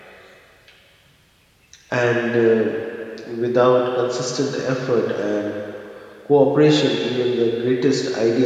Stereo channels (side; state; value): both; identical; correlation 1.00